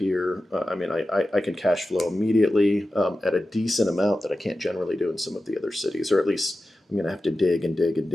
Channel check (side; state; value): both; normal; correlation 0.93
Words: I can cash flow immediately at a decent amount that I can't generally do in some of the other cities, or at least I'm going to have to dig and dig and